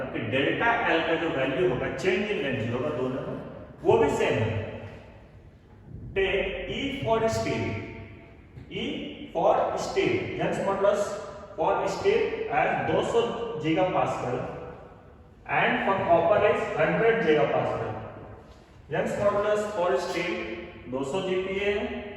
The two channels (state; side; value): identical; both; correlation 1.00